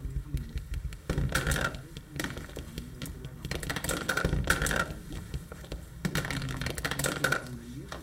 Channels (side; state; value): both; identical; correlation 1.00